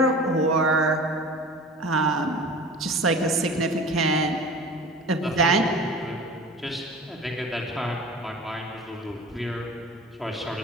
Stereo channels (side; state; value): both; normal; correlation 0.39